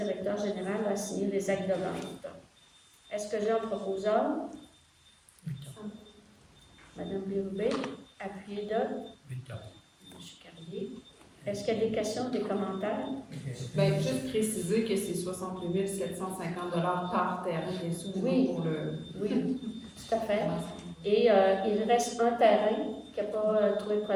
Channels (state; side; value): identical; both; correlation 1.00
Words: général à signer les actes de vente. Est-ce que j'ai un proposeur? Mme Bérubé, appuyé de M. Carrier. Est-ce qu'il y a des questions, des commentaires? Bien, juste préciser que c'est 68 750 par terrain, bien sûr, Oui. pour le... Oui, tout à fait. Et il reste un terrain qui n'a pas trouvé